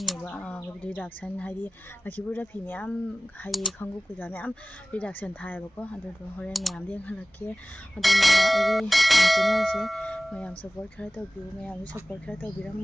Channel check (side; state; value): both; normal; correlation 0.98